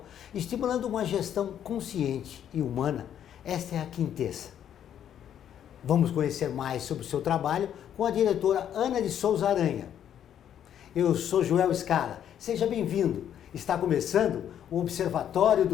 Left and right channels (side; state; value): right; quieter; 9.8 dB